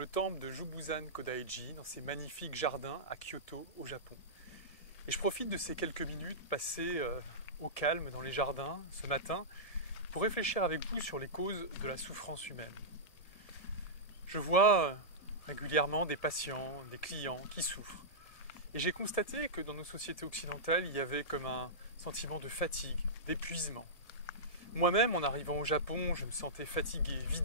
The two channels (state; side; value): late; right; 1.7 ms